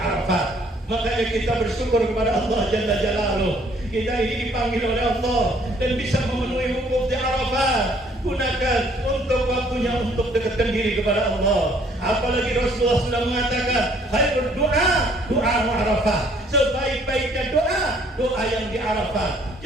Makanya kita bersyukur kepada Allah Jalla Jalaluh. Kita ini dipanggil oleh Allah dan bisa memenuhi wukuf di Arafah. Gunakan untuk waktunya untuk dekatkan diri kepada Allah. Apalagi Rasulullah sudah mengatakan, khairul doa Arafah. Sebaik-baiknya doa yang di Arafah.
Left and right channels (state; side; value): normal; both; correlation 0.61